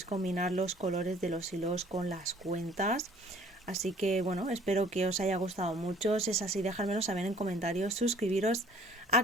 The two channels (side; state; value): both; normal; correlation 0.55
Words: combinar los colores de los hilos con las cuentas. Así que bueno, espero que os haya gustado mucho. Si es así, dejármelo saber en comentarios, suscribiros,